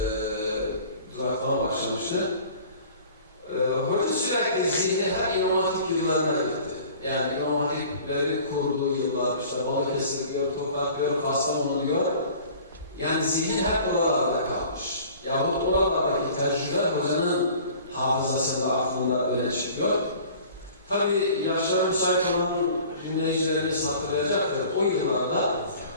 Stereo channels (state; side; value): inverted; both; correlation -0.47